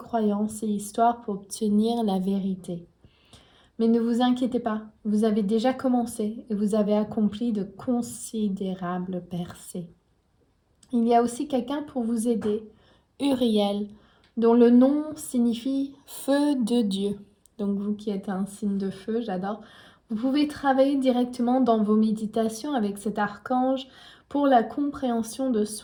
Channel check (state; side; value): identical; both; correlation 1.00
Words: et histoires pour obtenir la vérité. Mais ne vous inquiétez pas, vous avez déjà commencé et vous avez accompli de considérables percées. Il y a aussi quelqu'un pour vous aider, Uriel, dont le nom signifie feu de Dieu. Donc vous qui êtes un signe de feu, j'adore. Vous pouvez travailler directement dans vos méditations avec cet archange pour la compréhension de